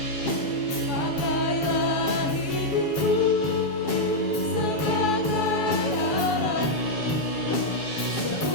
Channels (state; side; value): late; right; 7.0 ms